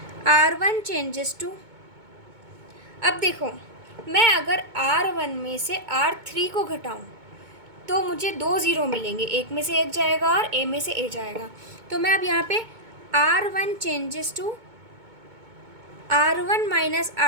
r1 चेंजेस टू। अब देखो मैं अगर r1 में से r3 को घटाऊँ तो मुझे 2 0 मिलेंगे, एक में से एक जाएगा और a में से a जाएगा। तो मैं अब यहाँ पे r1 changes to r1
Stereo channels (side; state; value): left; late; 2.2 ms